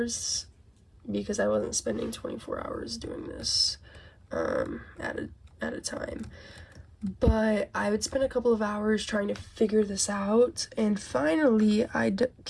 because I wasn't spending 24 hours doing this at a time. But I would spend a couple of hours trying to figure this out, and finally I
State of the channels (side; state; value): both; identical; correlation 1.00